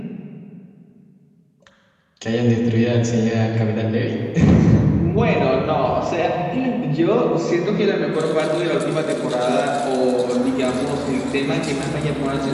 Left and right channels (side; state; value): both; identical; correlation 1.00